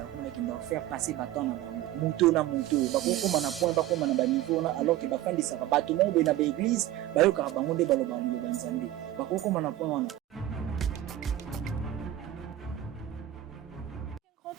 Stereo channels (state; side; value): quieter; left; 13.6 dB